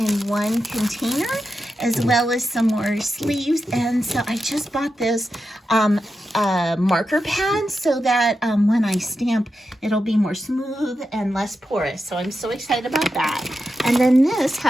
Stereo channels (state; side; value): normal; both; correlation 0.88